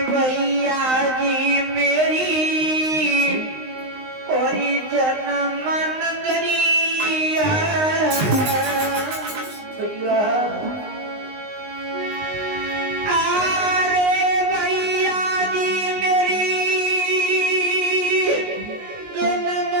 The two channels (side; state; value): left; late; 19 ms